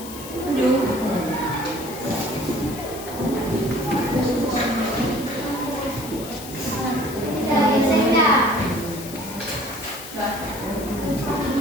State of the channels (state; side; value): noise; left; hiss, 13 dB below the sound